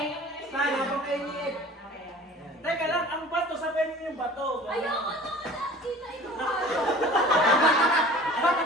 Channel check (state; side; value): normal; both; correlation 0.44